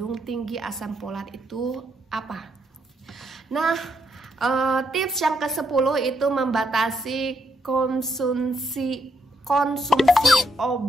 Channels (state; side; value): normal; both; correlation 0.77